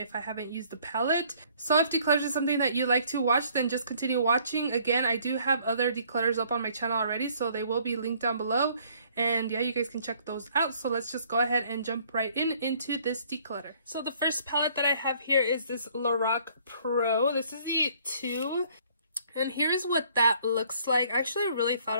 if I haven't used the palette. So if declutters is something that you like to watch, then just continue watching. Again, I do have other declutters up on my channel already, so they will be linked down below. And yeah, you guys can check those out. So let's just go ahead and jump right into this declutter. So the first palette that I have here is this Lorac Pro. This is the 2. And here's what that looks like. I actually really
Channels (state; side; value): inverted; both; correlation -0.61